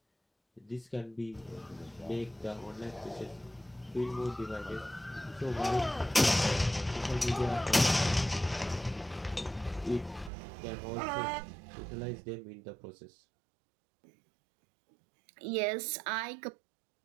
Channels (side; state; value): left; drops out; at 10.3 s